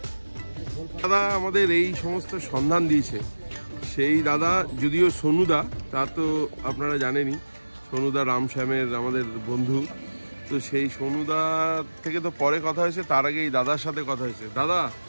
দাদা আমাদের এই সমস্ত সন্ধান দিয়েছে, সেই দাদা যদিও সোনুদা, তা তো আপনারা জানেনই, সোনুদা রামশ্যামের আমাদের বন্ধু। তো সেই সোনুদা থেকে তো পরে কথা হয়েছে, তার আগে এই দাদার সাথে কথা হয়েছে। দাদা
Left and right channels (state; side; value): inverted; both; correlation -1.00